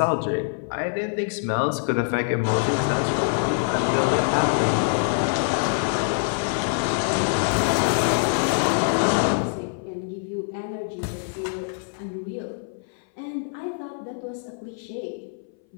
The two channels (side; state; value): right; silent; 60 dB below the other